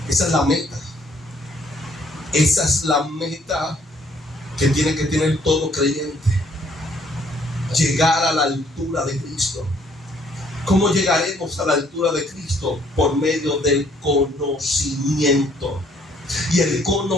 Esa es la meta. Esa es la meta que tiene que tener todo creyente. Llegar a la altura de Cristo. ¿Cómo llegaremos a la altura de Cristo? Por medio del conocimiento. Y el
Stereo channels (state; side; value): normal; both; correlation 0.64